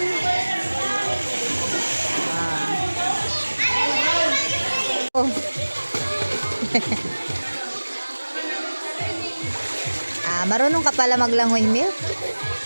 Marunong ka pala maglangoy, Milk?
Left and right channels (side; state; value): both; inverted; correlation -1.00